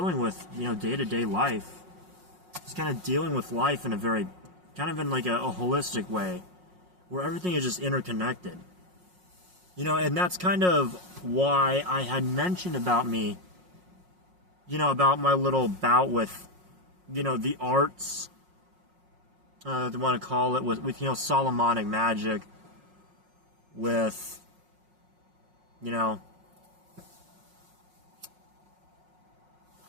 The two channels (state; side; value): late; left; 5.5 ms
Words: with, day-to-day life. Just kind of dealing with life in a very, kind of in like a holistic way, where everything is just interconnected. And that's kind of why I had mentioned about me, about my little bout with, the arts, they want to call it, with Solomonic magic, with,